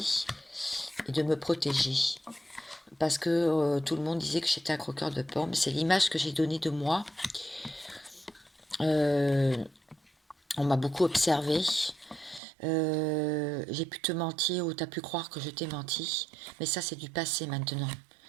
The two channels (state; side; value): drops out; left; at 12.4 s